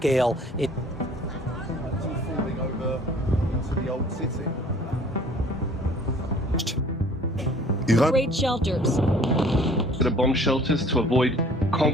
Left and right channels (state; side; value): normal; both; correlation 0.52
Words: Great shelters. The bomb shelters to avoid